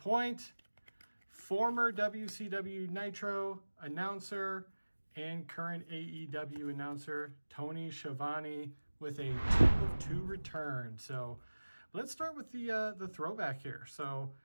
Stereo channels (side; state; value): both; inverted; correlation -1.00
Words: Former WCW Nitro announcer and current AEW announcer, Tony Schiavone, with a 2 of 2 return. So let's start with the throwback here. So